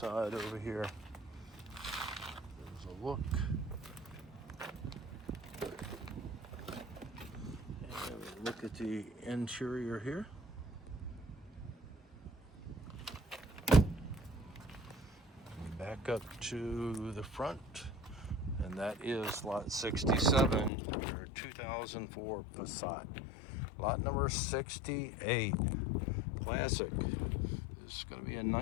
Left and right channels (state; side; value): drops out; right; at 20.7 s